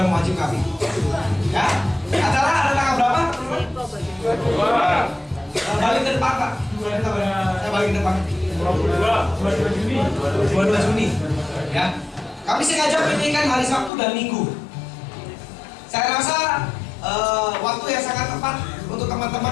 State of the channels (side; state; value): right; drops out; at 13.9 s